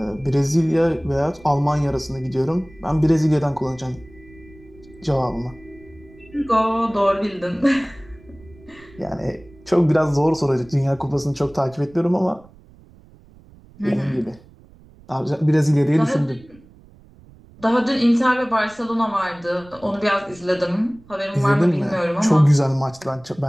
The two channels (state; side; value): noise; right; rumble, 25 dB below the sound